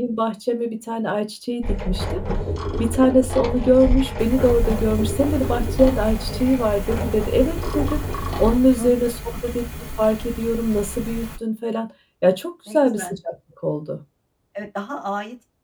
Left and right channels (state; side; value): identical; both; correlation 1.00